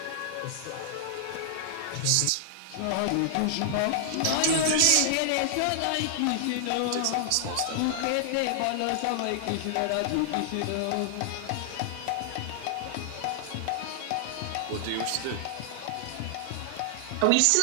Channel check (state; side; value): different; both; correlation -0.01